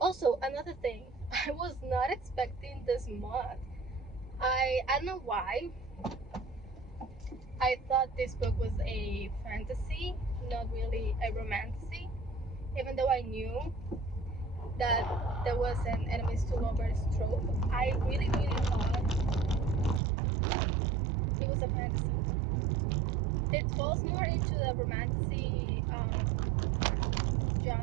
another thing, I was not expecting this month. I don't know why. I thought this book was a fantasy, not really a romantasy, even though I knew that there was an enemies to lovers trope. I really thought it was a fantasy. It falls more into the romantasy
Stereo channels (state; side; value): drops out; left; at 20.0 s